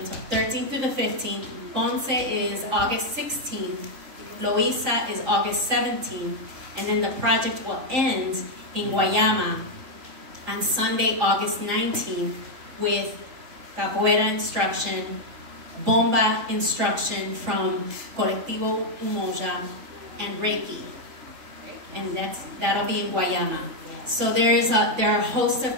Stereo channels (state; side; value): late; left; 3.8 ms